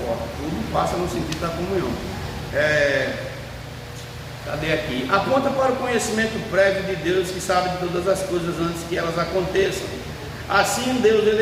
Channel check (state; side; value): identical; both; correlation 1.00